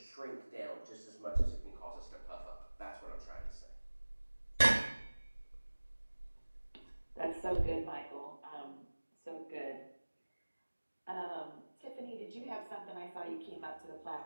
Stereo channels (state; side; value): inverted; both; correlation -1.00